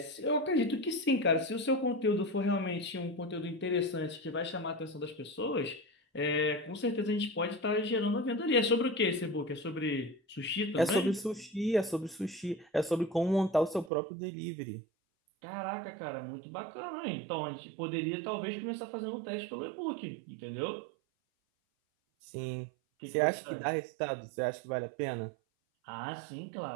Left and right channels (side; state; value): left; drops out; at 13.9 s